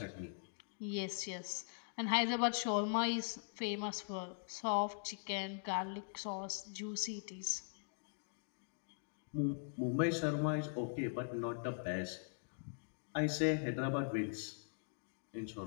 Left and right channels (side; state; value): right; silent; digital silence